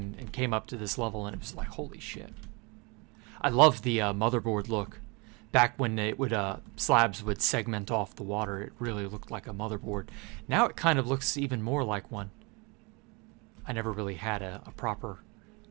came up to this level, and it was like, holy shit. I love the motherboard look. Back when it would slabs would segment off the water, it really looked like a motherboard. Now it kind of looks even more like one. I never really had a proper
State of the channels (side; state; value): left; quieter; 29.3 dB